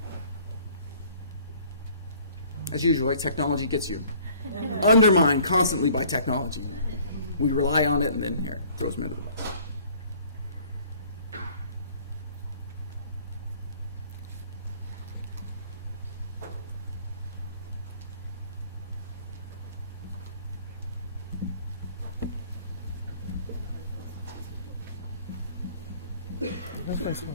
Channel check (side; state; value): both; inverted; correlation -0.54